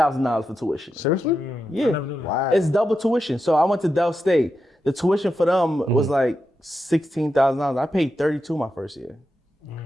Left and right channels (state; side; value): normal; both; correlation 0.87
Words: for tuition. Seriously? Yeah. I never knew that. Wow. It's double tuition. So I went to Del State. The tuition for them was like $16,000. I paid $32 my first year.